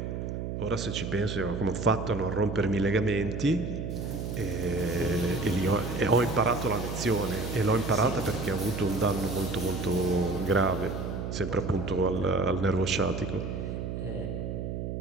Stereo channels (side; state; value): right; noise; hum, 4 dB below the sound